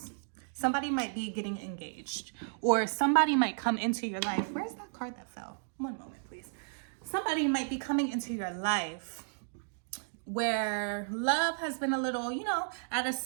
Somebody might be getting engaged, or somebody might come into your life. Where's that card that fell? One moment, please. Somebody might be coming into your life where love has been a little, you know, at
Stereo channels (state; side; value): silent; left; digital silence